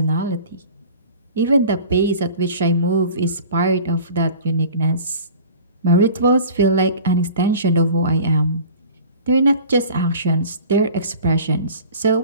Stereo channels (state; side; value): inverted; both; correlation -0.43